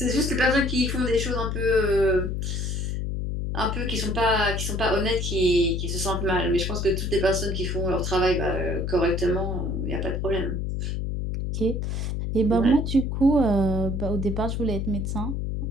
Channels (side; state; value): left; noise; hum, 2 dB below the sound